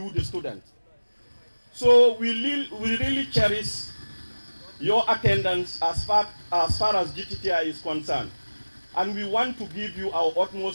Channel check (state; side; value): inverted; both; correlation -1.00